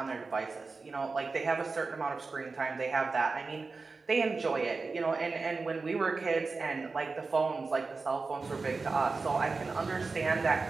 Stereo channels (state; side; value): quieter; left; 4.1 dB